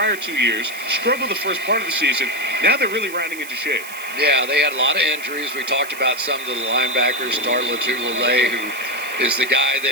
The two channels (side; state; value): right; noise; hiss, 14 dB below the sound